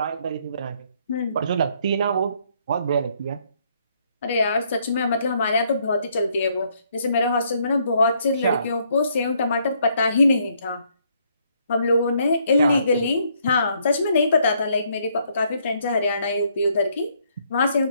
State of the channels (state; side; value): inverted; both; correlation -0.70